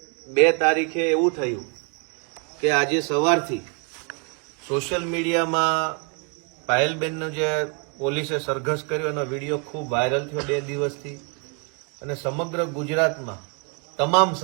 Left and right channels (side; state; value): left; quieter; 36.1 dB